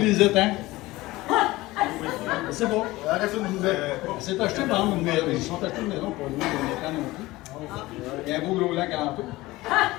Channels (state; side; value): quieter; right; 19.1 dB